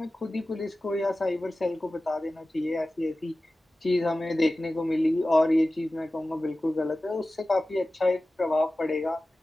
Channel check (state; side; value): normal; both; correlation 0.96